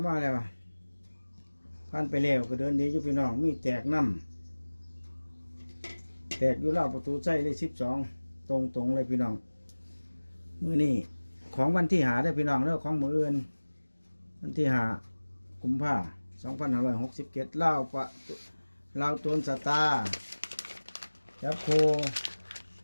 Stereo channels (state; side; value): inverted; both; correlation -1.00